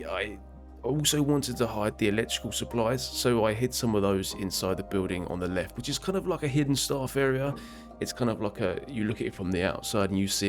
also wanted to hide the electrical supplies, so I hid some of those inside the building on the left, which is kind of like a hidden staff area. It's kind of like you look at it from the outside and you see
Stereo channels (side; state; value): both; identical; correlation 1.00